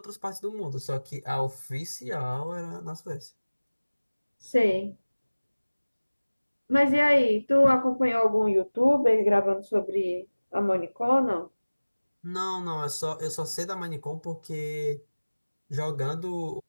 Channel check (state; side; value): inverted; both; correlation -1.00